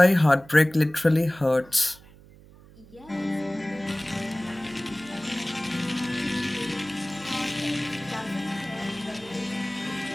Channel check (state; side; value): noise; right; hum, 23 dB below the sound